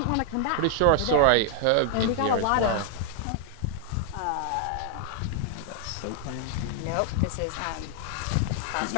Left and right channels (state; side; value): different; both; correlation 0.00